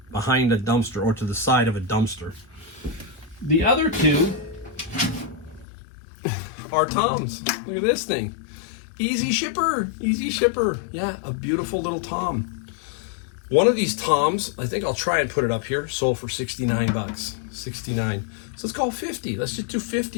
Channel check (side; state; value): right; drops out; at 5.7 s